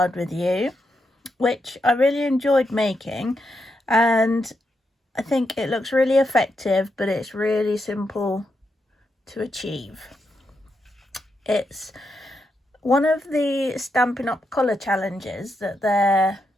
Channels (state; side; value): normal; both; correlation 0.83